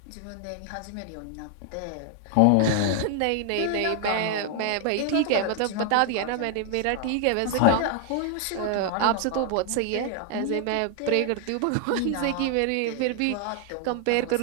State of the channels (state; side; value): different; both; correlation 0.00